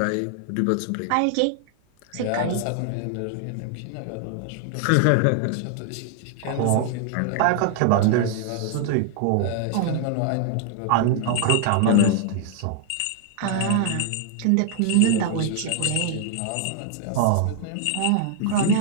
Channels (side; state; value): both; different; correlation -0.01